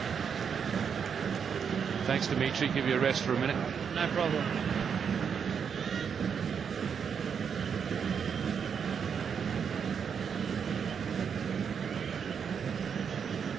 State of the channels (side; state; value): left; quieter; 7.0 dB